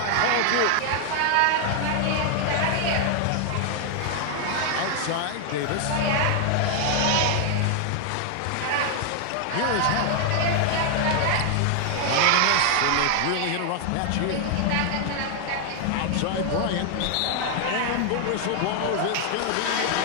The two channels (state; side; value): different; both; correlation 0.00